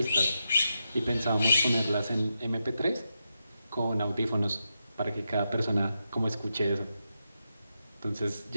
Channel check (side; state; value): both; inverted; correlation -0.86